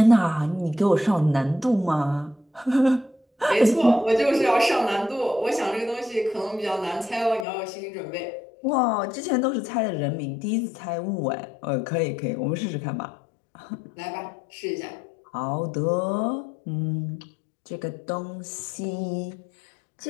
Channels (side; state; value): right; drops out; at 7.5 s